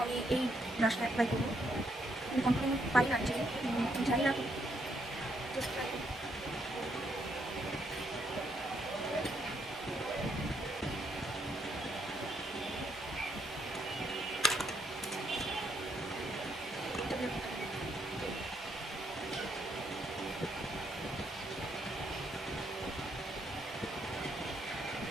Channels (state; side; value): normal; both; correlation 0.74